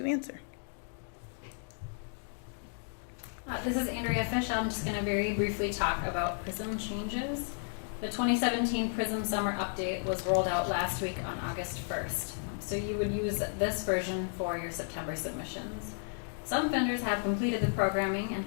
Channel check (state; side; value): silent; right; 56 dB below the other